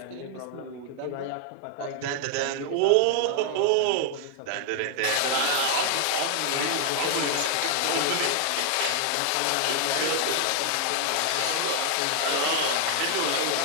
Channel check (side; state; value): both; different; correlation 0.00